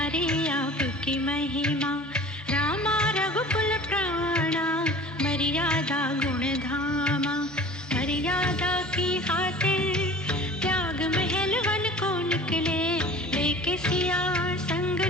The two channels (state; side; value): normal; both; correlation 0.43